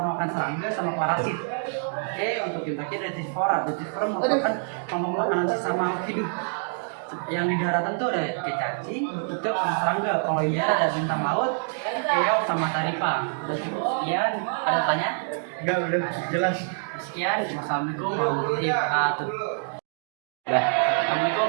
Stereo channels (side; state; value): left; silent; 61 dB below the other